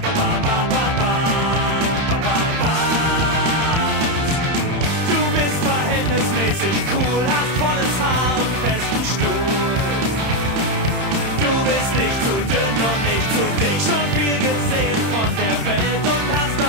Verhältnismäßig cool, hast volles Haar und festen Stuhl. Du bist nicht zu dünn und nicht zu dick, schon viel gesehen von der Welt und hast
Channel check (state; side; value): late; left; 31 ms